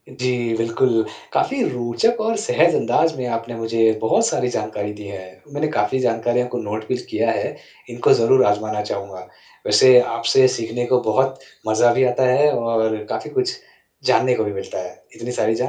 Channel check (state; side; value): identical; both; correlation 1.00